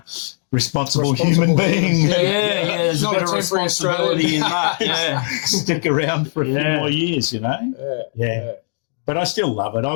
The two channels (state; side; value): silent; right; digital silence